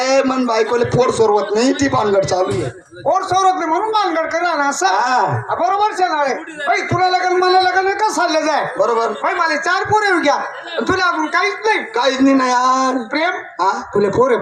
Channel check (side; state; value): both; identical; correlation 1.00